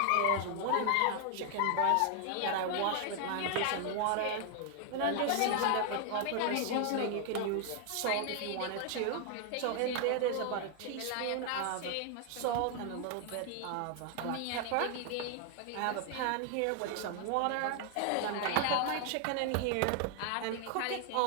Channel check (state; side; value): different; both; correlation 0.00